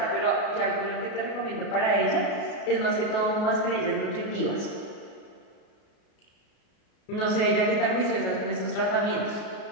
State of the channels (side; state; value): right; late; 33 ms